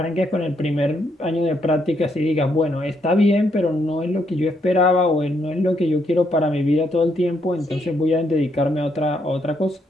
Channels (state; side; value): normal; both; correlation 0.75